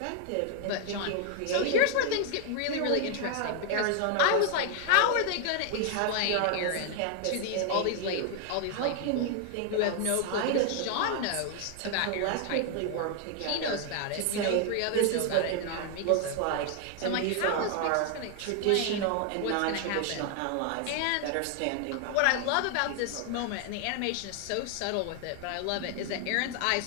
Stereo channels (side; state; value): both; different; correlation 0.00